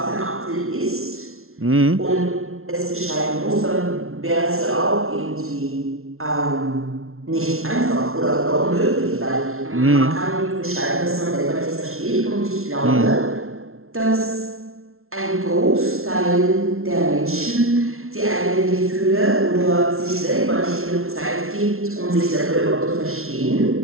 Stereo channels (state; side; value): late; left; 0.62 ms